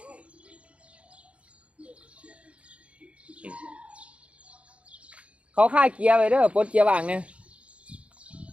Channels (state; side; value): late; left; 0.062 ms